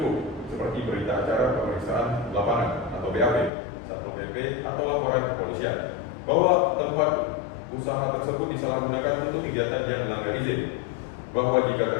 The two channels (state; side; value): drops out; right; at 3.5 s